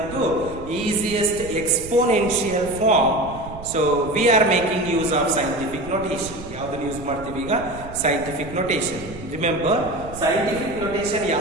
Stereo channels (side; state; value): right; noise; rumble, 14 dB below the sound